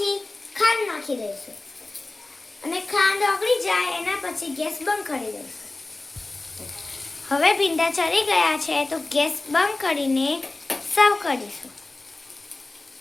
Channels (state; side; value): quieter; right; 3.0 dB